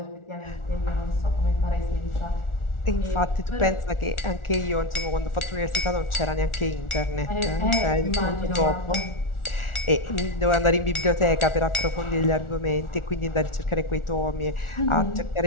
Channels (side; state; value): right; late; 1.4 ms